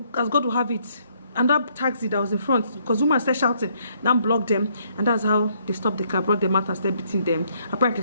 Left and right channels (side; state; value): both; inverted; correlation -0.69